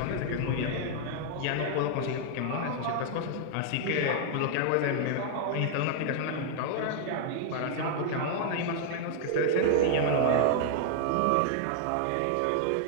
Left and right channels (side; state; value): both; different; correlation -0.01